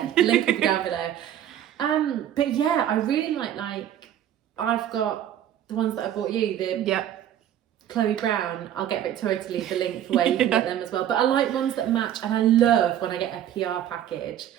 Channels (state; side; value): quieter; left; 11.0 dB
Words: the link will be down below. But yeah, I really like I've got the ones that I bought you, the Chloe Brown. I'll get Victoria to leave the link for where you can get them as well. But I like ones that match, and I love when I get a PR package